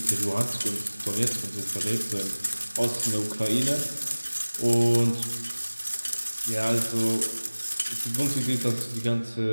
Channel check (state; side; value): inverted; both; correlation -1.00